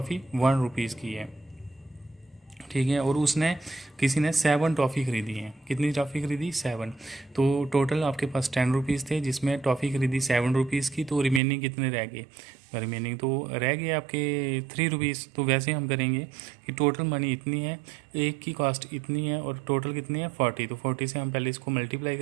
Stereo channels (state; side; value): drops out; left; at 11.4 s